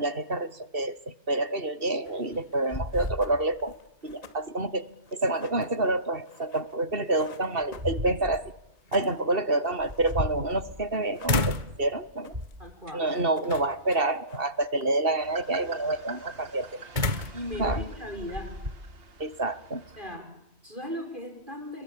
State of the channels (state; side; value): late; left; 2.2 ms